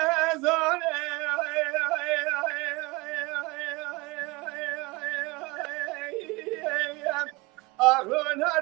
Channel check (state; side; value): quieter; left; 24.6 dB